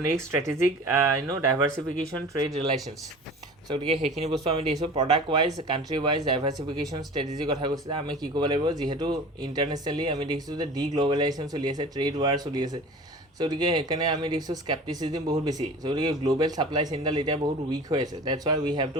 নেক্সট ষ্ট্ৰেটেজিক ডাইভাৰ্চিফিকেশ্যন ট্ৰেড ৰিলেশ্যনছ চ' গতিকে সেইখিনি বস্তু আমি দেখিছোঁ প্ৰডাক্ট ৱাইজ কাণ্ট্ৰি ৱাইজ ডাইভাৰ্চিফিকেশ্যন ষ্ট্ৰেটেজিৰ কথা কৈছে আমি কি কৰিব লাগিব যিহেতু ইণ্টাৰনেশ্যনেলি আমি দেখিছোঁ যে গ্ল'বেলাইজেশ্যন চলি আছে ট্ৰেড ৱাৰ চলি আছে চ' গতিকে সেইকাৰণে আমি দেখিছোঁ স্কেপ্টিচিজিম বহুত বেছি চ' গতিকে গ্ল'বেল ছাপ্লাই চেইনডাল এতিয়া বহুত উইক হৈ আছে that's why we have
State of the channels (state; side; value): normal; both; correlation 0.39